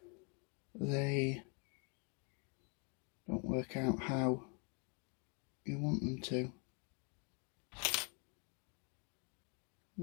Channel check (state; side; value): quieter; right; 35.3 dB